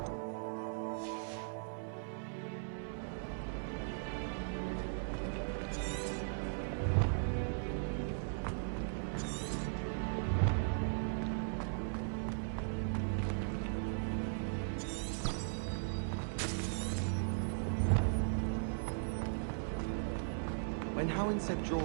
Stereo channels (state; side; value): silent; left; 52 dB below the other